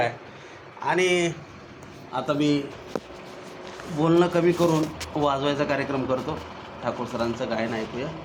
आणि आता मी बोलणं कमी करून वाजवायचा कार्यक्रम करतो. ठाकूर सरांचं गायन ऐकूया.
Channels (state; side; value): identical; both; correlation 1.00